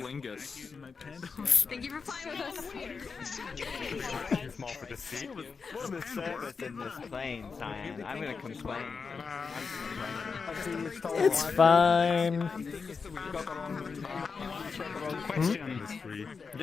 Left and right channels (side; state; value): right; quieter; 5.2 dB